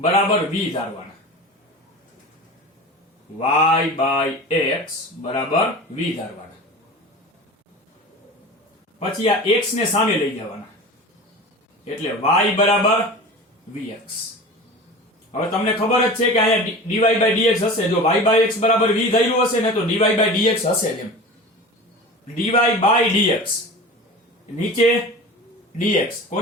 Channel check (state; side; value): normal; both; correlation 0.34